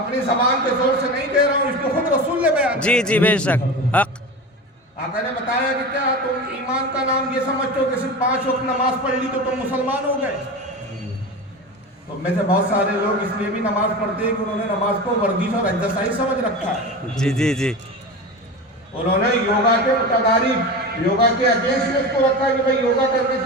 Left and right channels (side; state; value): both; normal; correlation 0.27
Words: زبان کے زور سے نہیں کہہ رہا ہوں، اس کو خود رسول نے بیان کیا۔ جی بے شک، حق۔ آقا نے بتایا کہ کیا تم ایمان کا نام یہ سمجھتے ہو کہ صرف 5 وقت نماز پڑھ لی تو تم مسلمان ہو گئے؟ تو میں سے بہت سارے لوگ اس لیے بھی نماز پڑھتے ہیں کہ انہوں نے نماز کو ورزش اور ایکسرسائز سمجھ رکھا ہے۔ جی۔ انہوں نے یوگا کے متدارک، یوگا کے اگینسٹ اس کو رکھا کہ بھئی یوگا کرنے